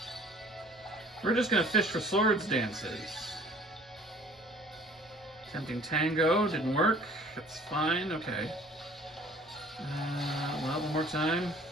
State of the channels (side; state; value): both; normal; correlation 0.52